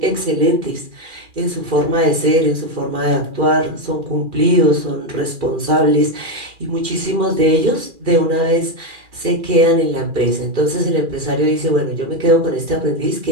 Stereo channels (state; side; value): late; left; 2.4 ms